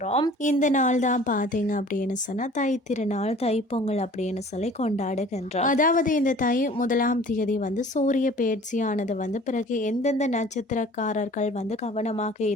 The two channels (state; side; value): normal; both; correlation 0.48